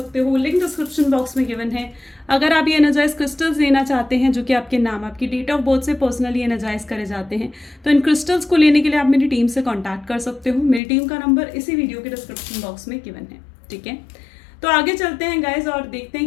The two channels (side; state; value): right; drops out; at 10.8 s